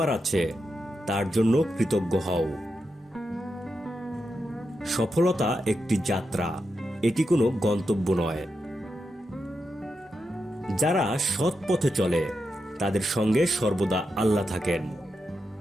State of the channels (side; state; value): both; normal; correlation 0.87